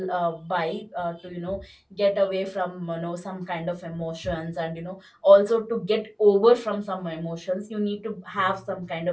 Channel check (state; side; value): identical; both; correlation 1.00